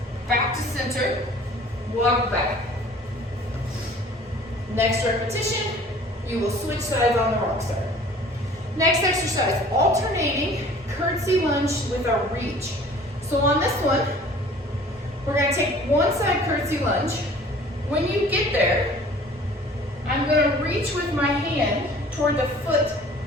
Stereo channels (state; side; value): normal; both; correlation 0.49